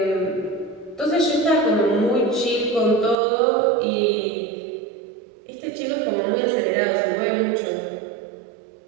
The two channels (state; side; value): drops out; left; at 3.2 s